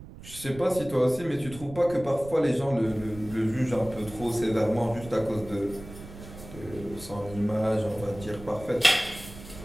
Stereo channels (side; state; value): right; noise; rumble, 15 dB below the sound